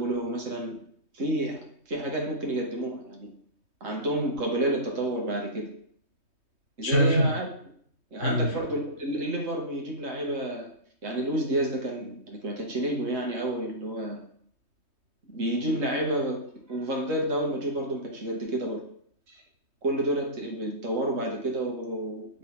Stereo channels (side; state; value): left; late; 3.2 ms